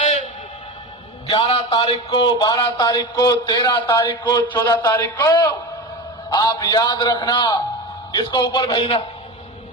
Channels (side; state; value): both; normal; correlation 0.25